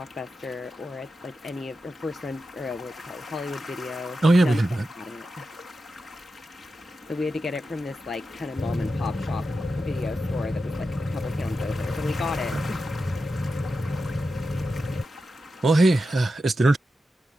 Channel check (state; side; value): normal; both; correlation 0.90